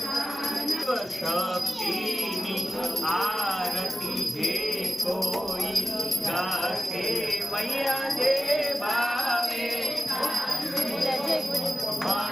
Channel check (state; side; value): normal; both; correlation 0.94